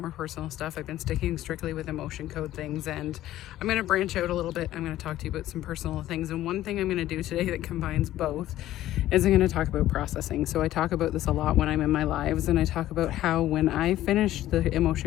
personal stuff. I've been sticking strictly with emotion code things, and I'm going to branch out a little bit. I'm going to talk to you about some personal things, and one thing I'm going to do today that combines both is I'm going to talk about processing. So I talk about this a lot when I'm in my lives, and I talk about how when I finish the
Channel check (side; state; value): right; quieter; 14.0 dB